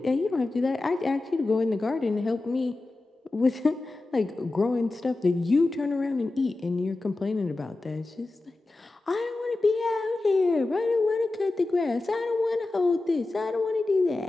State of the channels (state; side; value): quieter; right; 3.1 dB